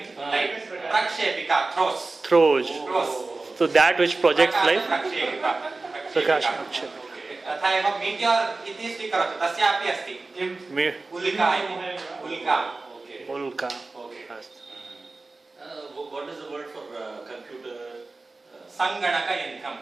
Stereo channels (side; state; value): left; quieter; 3.5 dB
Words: प्रक्षेपिका throws. So that which projects light. प्रकाशप्रक्षेपिका। तथा एव मीटियोर् इति स्वीकरोतु, तस्यापि अस्ति उल्का इति। उल्का। What is the word for computer? संगणकयन्त्रं।